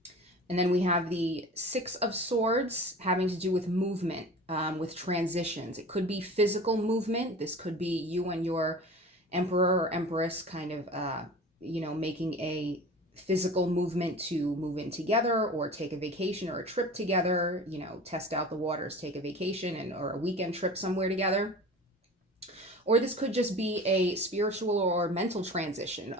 And then we have the Six of Swords having to do with movement, with transitions. It could be physical movement. This could be you and your Emperor or Empress kind of, you know, making a physical movement to move in together or take a vacation or a trip together, you know, test out the waters, take a vacation or a weekend trip somewhere together. Or this could just be a spiritual or mental transition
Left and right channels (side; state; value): both; normal; correlation 0.38